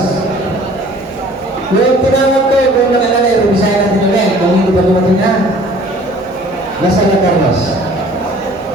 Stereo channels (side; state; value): left; noise; hum, 26 dB below the sound